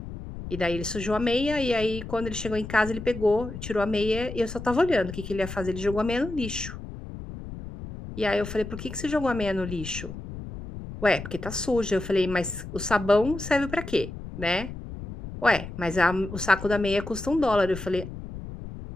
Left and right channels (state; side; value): noise; left; rumble, 10 dB below the sound